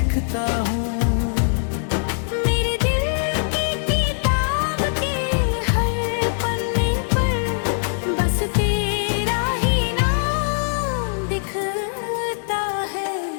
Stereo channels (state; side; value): silent; right; digital silence